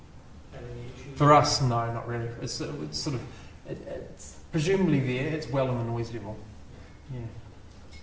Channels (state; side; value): identical; both; correlation 1.00